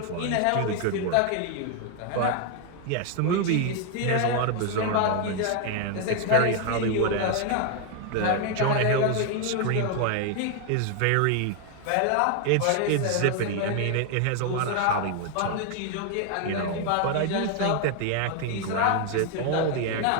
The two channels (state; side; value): different; both; correlation 0.01